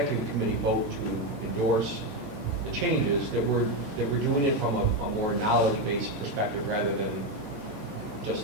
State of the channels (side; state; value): both; normal; correlation 0.09